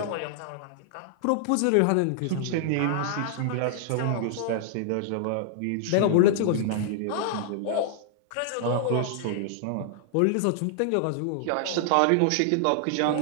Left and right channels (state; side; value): different; both; correlation -0.01